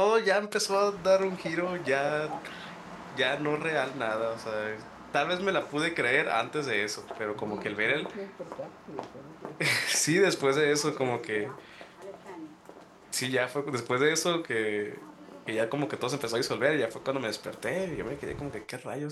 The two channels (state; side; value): identical; both; correlation 1.00